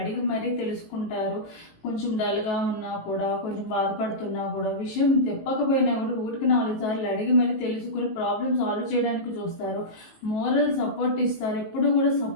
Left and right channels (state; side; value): late; right; 19 ms